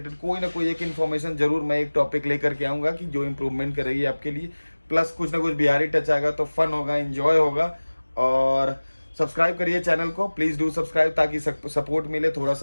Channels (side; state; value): both; inverted; correlation -1.00